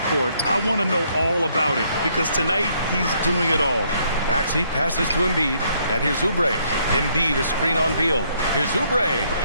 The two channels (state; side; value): inverted; both; correlation -0.69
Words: court, I want to know all about it, because tonight he's doing it all. Maxey passes to Embiid, and here's Oubre. Embiid, a screen on Beal. Here's Oubre.